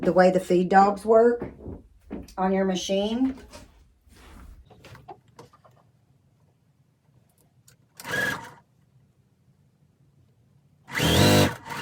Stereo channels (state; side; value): identical; both; correlation 1.00